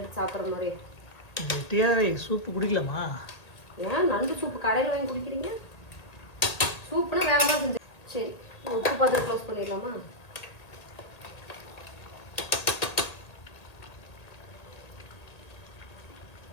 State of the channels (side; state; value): right; late; 1.8 ms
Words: எடுத்து சாப்பிட்ற மாதிரி? கெட்டியாகவே சூப்பு குடிக்கலாமா? ஏன் நண்டு சூப்பு கடையில் வாங்கி குடிக்கிறீங்க? சூப்புனா வேற மாதிரி செஞ்சு. சரி, உப்பு பார்த்து க்ளோஸ் பண்ணிடலாமா?